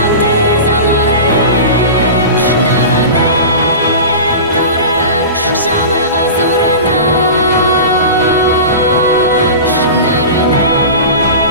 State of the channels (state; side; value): inverted; both; correlation -0.31